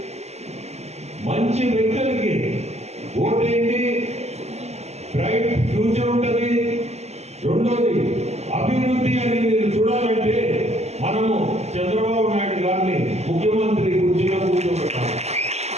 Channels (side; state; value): left; late; 0.32 ms